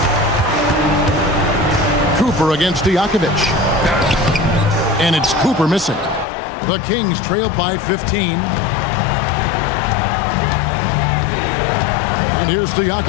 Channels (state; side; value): drops out; right; at 6.2 s